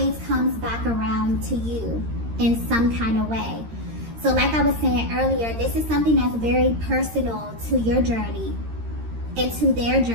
comes back around to you in some kind of way. So like I was saying earlier, this is something that's very personal to your journey and to their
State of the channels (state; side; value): late; left; 13 ms